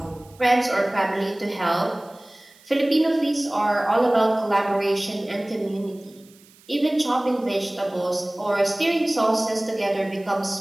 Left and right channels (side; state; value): right; noise; hiss, 27 dB below the sound